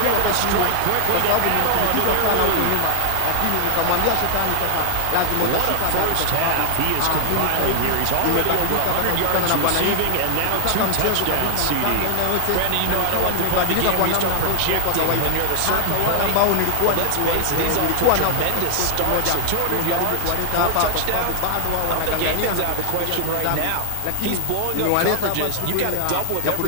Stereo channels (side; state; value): both; different; correlation 0.00